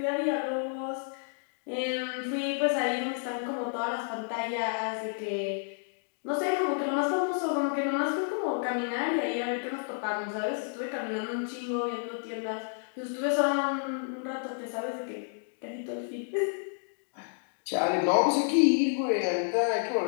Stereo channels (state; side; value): silent; right; 58 dB below the other